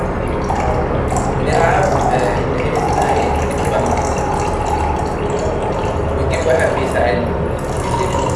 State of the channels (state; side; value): identical; both; correlation 1.00